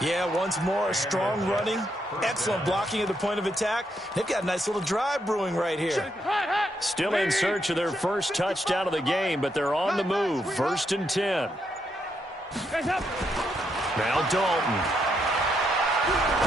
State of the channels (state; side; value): normal; both; correlation 0.78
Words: Yeah, once more, strong running, excellent blocking at the point of attack. They've got a nice little drive brewing right here. Still in search of their first touchdown of the game, but they're on the move. 1st and 10. Now Dalton.